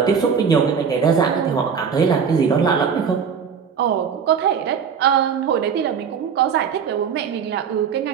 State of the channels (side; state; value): left; quieter; 6.7 dB